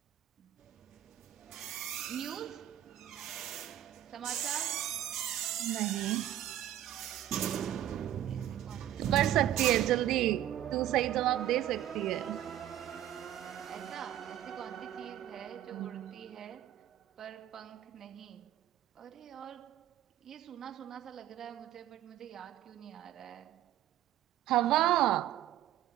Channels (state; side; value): quieter; left; 12.3 dB